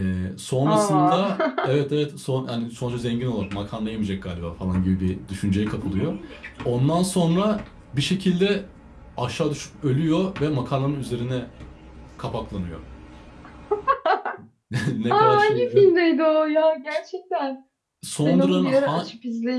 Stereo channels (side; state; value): both; identical; correlation 1.00